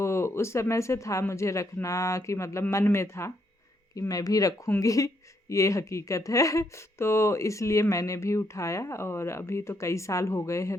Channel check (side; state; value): both; normal; correlation 0.75